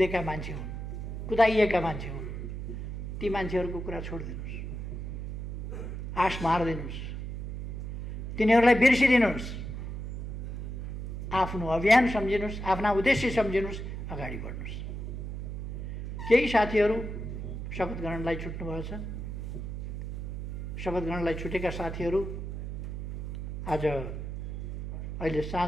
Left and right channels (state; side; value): noise; right; hum, 6 dB below the sound